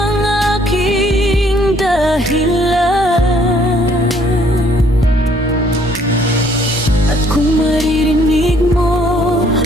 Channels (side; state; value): both; normal; correlation 0.63